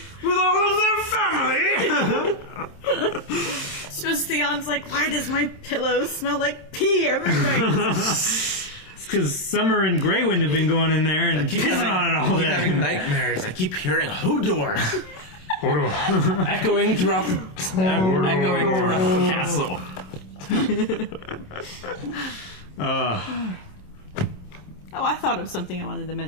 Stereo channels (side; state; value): right; late; 27 ms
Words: of their family. So Theon's like, why does my pillow smell like pee every night? Because Summer and Greywind have been going in there and pissing on it all day. I keep having nightmares. I keep hearing Hodor. echoing throughout the castle. Oh, I thought of something I wanted to